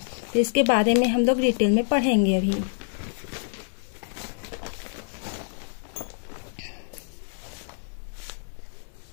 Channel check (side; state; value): right; silent; 60 dB below the other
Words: तो इसके बारे में हम लोग डिटेल में पढ़ेंगे अभी।